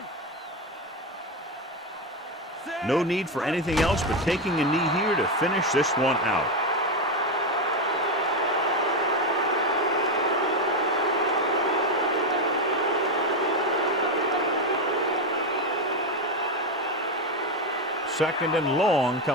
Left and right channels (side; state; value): both; normal; correlation 0.10